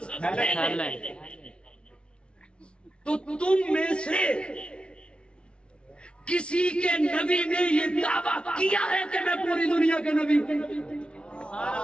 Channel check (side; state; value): right; late; 0.058 ms